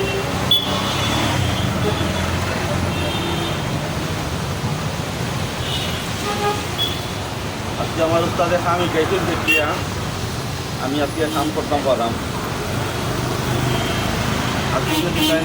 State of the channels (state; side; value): identical; both; correlation 1.00